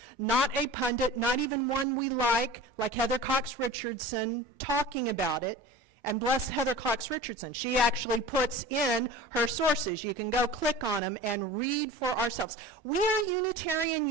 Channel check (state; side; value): normal; both; correlation 0.38